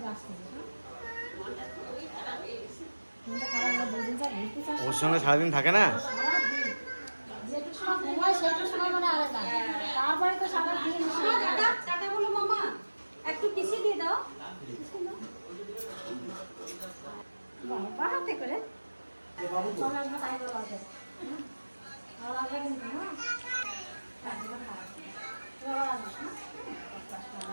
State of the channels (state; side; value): inverted; both; correlation -1.00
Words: আসছে। মনটা খারাপ হলে 2 দিন যাবে, ঘুরতে চাস? ওর সঙ্গে সারাদিন থাকে না। যেটু সময় ঘুমায় সেটু সময় মানে আলাদা। তারপরে তো সারা দিন টাটা টাটা বলো মামা, একটু কিসি দিয়ে দাও। বাবা হাতে করে চলে আসবে তাই বলা আছে। ভালো লাগবে কিন্তু না? ভালো লাগবে না?